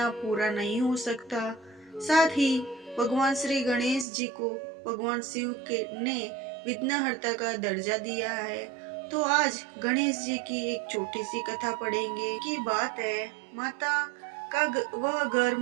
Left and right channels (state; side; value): drops out; left; at 4.0 s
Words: पूरा नहीं हो सकता। साथ ही भगवान श्री गणेश जी को भगवान शिव के ने विघ्नहर्ता का दर्जा दिया है। तो आज गणेश जी की एक छोटी सी कथा पढ़ेंगे। की बात है, माता का वह घर